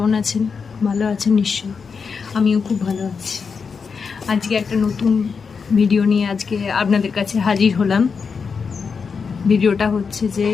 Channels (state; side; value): quieter; right; 5.5 dB